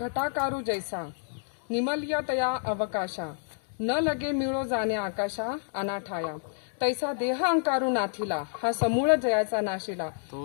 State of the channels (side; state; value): right; silent; digital silence